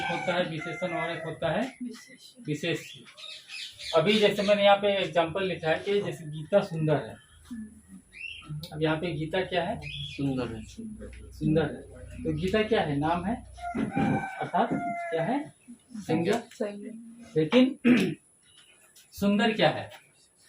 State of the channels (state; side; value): identical; both; correlation 1.00